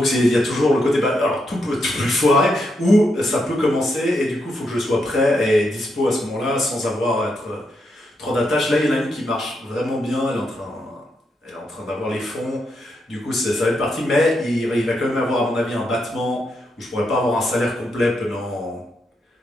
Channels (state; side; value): normal; both; correlation 0.81